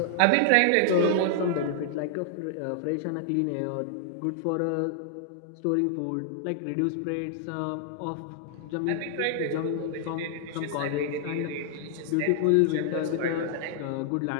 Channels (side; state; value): both; different; correlation -0.01